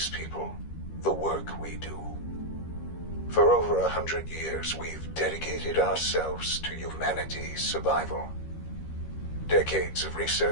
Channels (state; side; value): late; right; 13 ms